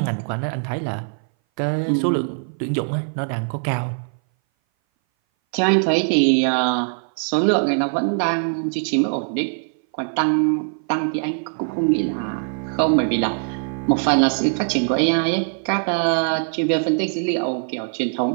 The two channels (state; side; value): silent; left; 59 dB below the other